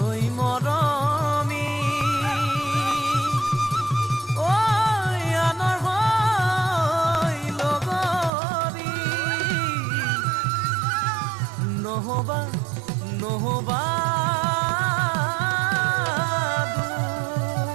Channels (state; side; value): drops out; left; at 8.3 s